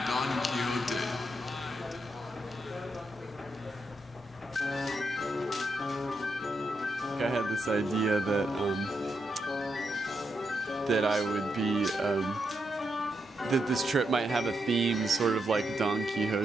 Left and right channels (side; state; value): both; normal; correlation 0.83